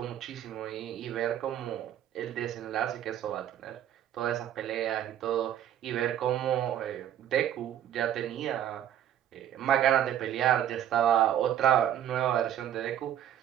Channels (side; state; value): left; quieter; 10.9 dB